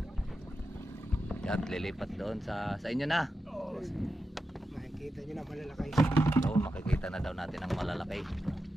At lilipat doon sa inyo na. Makikita niyo na malalaki. Oo, makikita na daw natin ang malalaki.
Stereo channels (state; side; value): normal; both; correlation 0.90